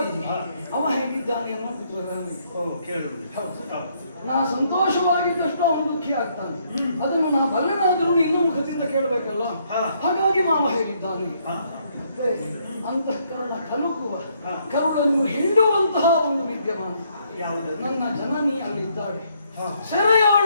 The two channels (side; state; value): both; inverted; correlation -0.71